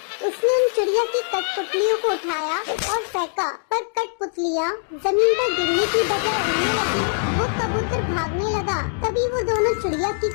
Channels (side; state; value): right; silent; digital silence